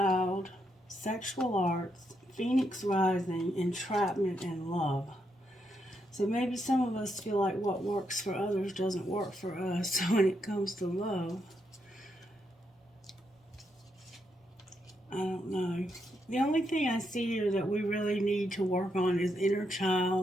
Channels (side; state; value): both; normal; correlation 0.80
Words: sexual arts, Phoenix rising, entrapment, and love. So maybe some of us feel like what works for others doesn't work for us when it comes to love. I don't know. The only thing I see here that we really need to work on is inner